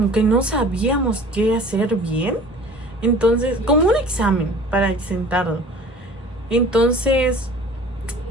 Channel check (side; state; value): both; normal; correlation 0.45